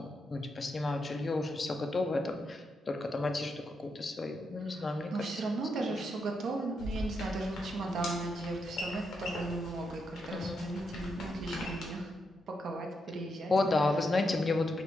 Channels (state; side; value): normal; both; correlation 0.82